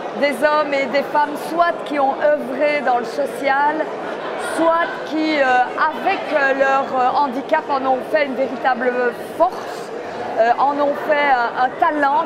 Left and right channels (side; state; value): both; identical; correlation 1.00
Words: des hommes et des femmes, soit qui ont œuvré dans le social, soit qui, avec leur handicap, en ont fait une véritable force, en ont fait un talent